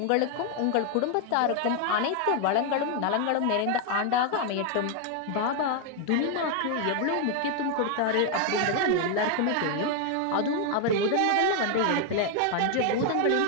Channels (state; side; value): different; both; correlation 0.01